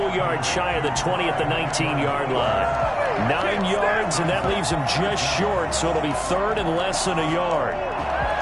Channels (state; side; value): identical; both; correlation 1.00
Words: yard shy of the 20 at the 19-yard line. 9 yards, and that leaves him just short, so it'll be 3rd and less than a yard.